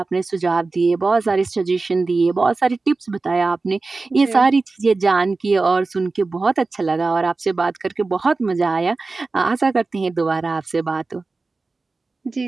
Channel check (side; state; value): left; quieter; 3.7 dB